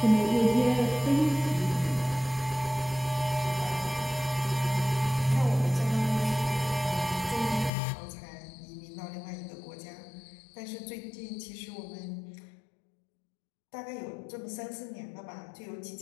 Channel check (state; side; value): drops out; right; at 7.7 s